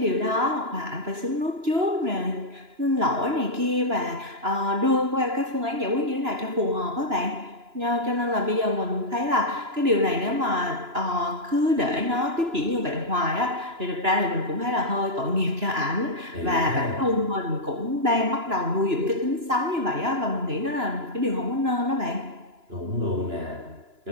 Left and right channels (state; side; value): late; left; 2.9 ms